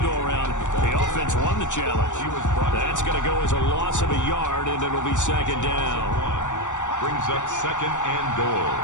go-around, the offense won the challenge. That's going to go as a loss of a yard, and it'll be second down. Brings up 2nd and goal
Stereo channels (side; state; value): right; late; 0.85 ms